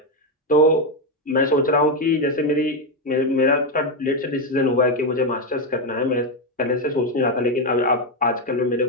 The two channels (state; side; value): normal; both; correlation 0.06